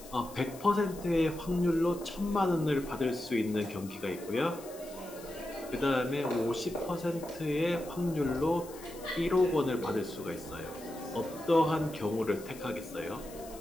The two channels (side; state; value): left; noise; hiss, 18 dB below the sound